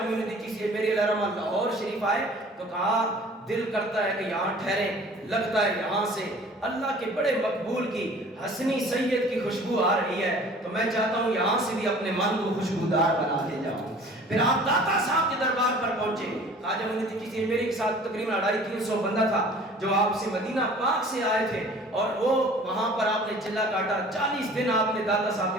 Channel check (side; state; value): both; normal; correlation 0.48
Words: معین الدین چشتی اجمیری علیہ الرحمہ لاہور شریف آئے تو کہا دل کرتا ہے کہ یہاں ٹھہریں، لگتا ہے یہاں سے اللہ کے بڑے مقبول کی حسنی سید کی خوشبو آ رہی ہے، تو میں چاہتا ہوں یہاں سے بھی اپنے من کو خوشبودار بنا دے جاؤں۔ پھر آپ داتا صاحب کے دربار پر پہنچے۔ خواجہ معین الدین چشتی اجمیری کے ساتھ تقریباً 250-300 بندہ تھا جو آپ سے مدینہ پاک سے آئے تھے، اور وہ وہاں پر آپ نے چلا کاٹا، 40 دن آپ نے داتا صاحب